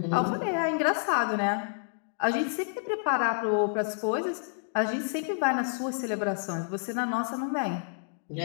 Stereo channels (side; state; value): right; silent; digital silence